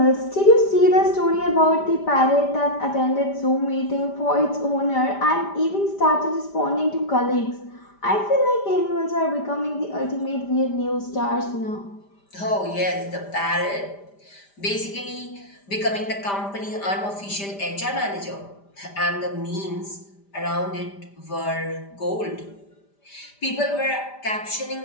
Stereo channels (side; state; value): right; late; 5.0 ms